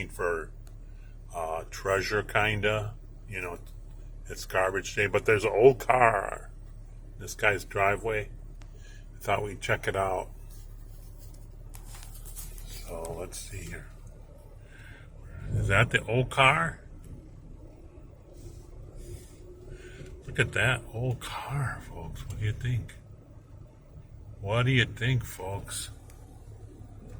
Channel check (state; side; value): identical; both; correlation 1.00